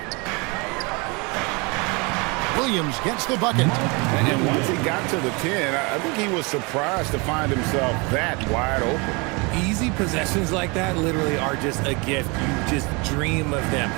Williams gets the bucket. And once he got to the 10, I think he was surprised to find himself that wide open. Easy possessions like that literally are just a gift. You just dream of them.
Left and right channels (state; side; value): quieter; left; 28.7 dB